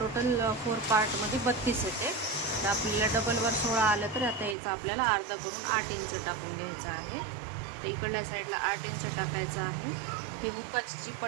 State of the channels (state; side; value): drops out; left; at 4.5 s